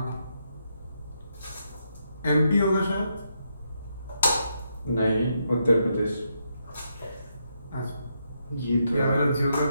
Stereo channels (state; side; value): inverted; both; correlation -0.80